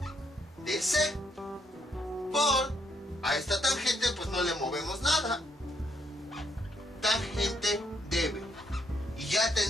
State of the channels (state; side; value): normal; both; correlation 0.74